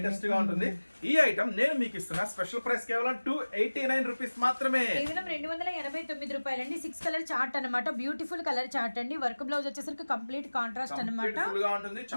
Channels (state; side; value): inverted; both; correlation -1.00